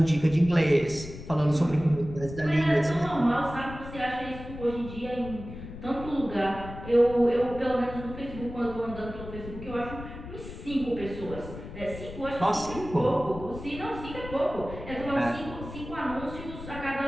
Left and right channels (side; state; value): left; noise; rumble, 12 dB below the sound